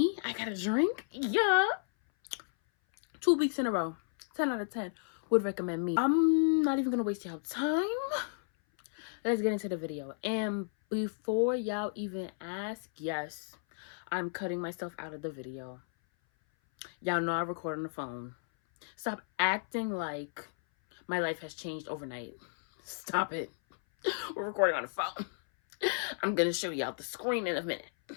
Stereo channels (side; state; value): right; silent; 56 dB below the other